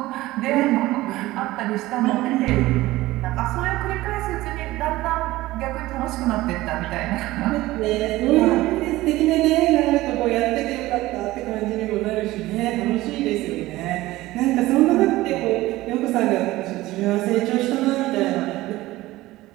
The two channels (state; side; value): quieter; left; 17.7 dB